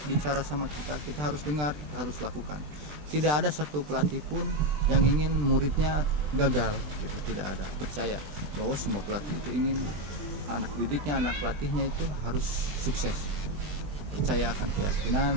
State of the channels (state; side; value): late; left; 20 ms